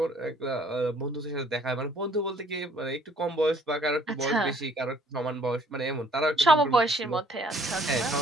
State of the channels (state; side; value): normal; both; correlation 0.60